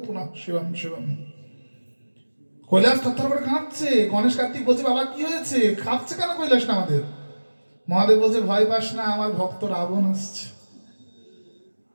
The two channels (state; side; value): inverted; both; correlation -1.00